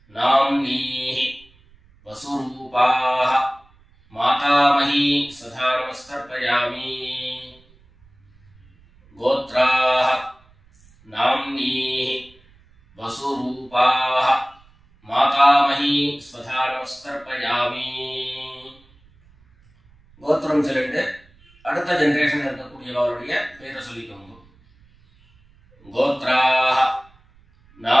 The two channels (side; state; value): right; noise; rumble, 30 dB below the sound